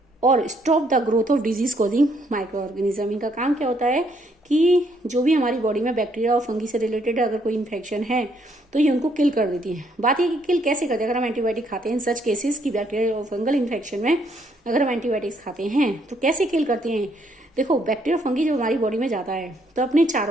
और stop the growth of disease causing micro organism. इनका काम क्या होता है कि जो भी हमारी बॉडी में बैक्टीरिया और फंगी से रिलेटेड अगर कोई इन्फेक्शन है तो ये उनको किल कर देती है। बात ये कि किल कैसे करते हैं? अगर हम एंटीबायोटिक खाते हैं इन सच केसेस की बैक्टीरिया और फंगल इन्फेक्शन में अगर हम एंटीबायोटिक्स खाते हैं तो कैसे किल करते हैं? देखो बैक्टीरिया फंगी जब हमारी बॉडी में जाता है तो अपने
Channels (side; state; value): both; normal; correlation 0.70